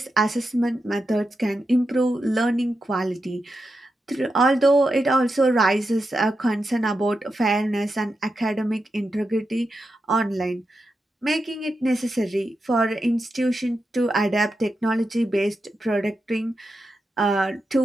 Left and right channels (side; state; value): both; normal; correlation 0.88